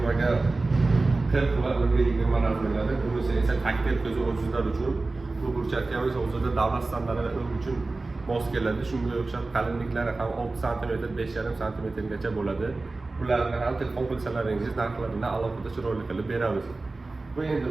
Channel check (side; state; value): left; quieter; 3.4 dB